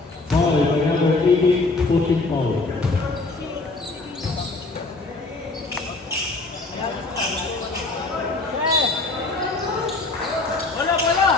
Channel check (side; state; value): right; quieter; 3.4 dB